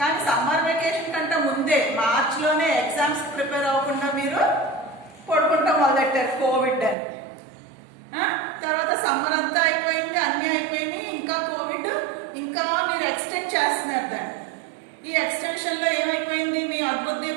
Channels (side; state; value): left; drops out; at 7.0 s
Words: summer vacation కంటే ముందే మార్చిలోనే exams prepare అవ్వకుండా మీరు పడుకుంటాం మొదలెట్టారు Covid అని. తర్వాత సమ్మర్ అంతా అయిపోయింది, అన్నీ అయిపోయినాయి, ఇంకా కోవిడ్ ఇంకా మీరు ఎక్స్టెండ్ చేస్తున్నారు దాన్ని. ఈ ఎక్స్టెన్షన్లో ఏమైపోయింది? మీ అద్భుత